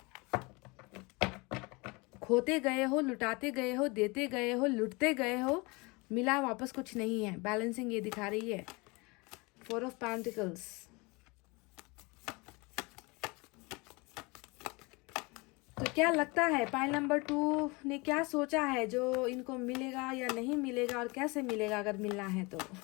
खोते गए हो, लुटाते गए हो, देते गए हो, लुटते गए हो, मिला वापस कुछ नहीं है। बैलेंसिंग ये दिखा रही है। 4 ऑफ पेंटिकल्स, तो क्या लगता है पाइल नंबर 2 ने क्या सोचा है जो इनको मिलेगा या नहीं मिलेगा और कैसे मिलेगा अगर मिलना है तो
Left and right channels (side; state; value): right; quieter; 26.7 dB